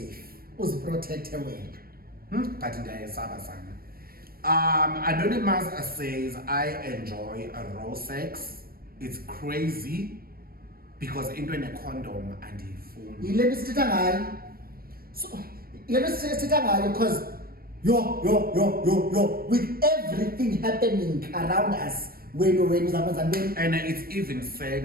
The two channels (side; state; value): left; late; 0.44 ms